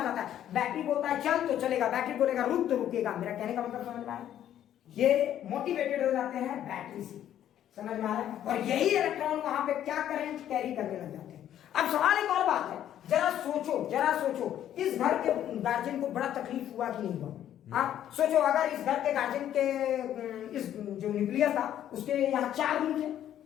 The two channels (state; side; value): quieter; right; 11.1 dB